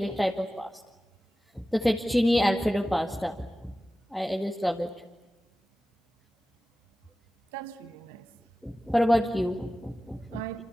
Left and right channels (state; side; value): normal; both; correlation 0.95